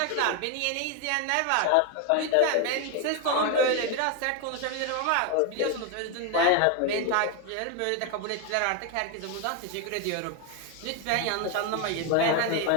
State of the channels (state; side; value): different; both; correlation 0.01